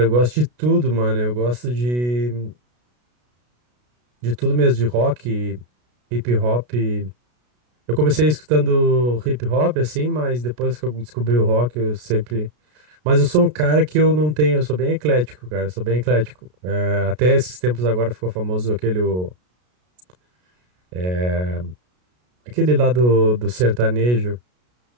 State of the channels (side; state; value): left; late; 33 ms